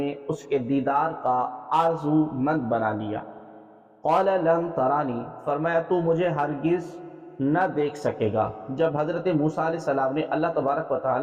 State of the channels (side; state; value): both; identical; correlation 1.00